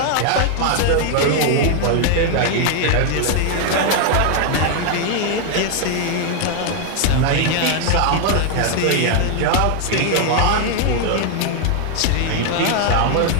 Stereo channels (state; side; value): different; both; correlation 0.00